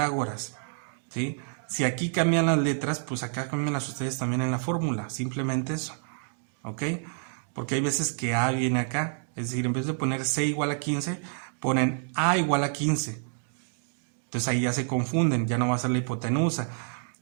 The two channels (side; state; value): left; silent; 59 dB below the other